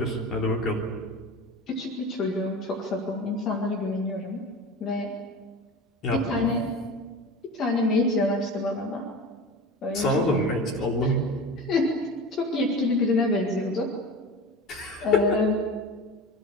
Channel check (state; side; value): normal; both; correlation 0.32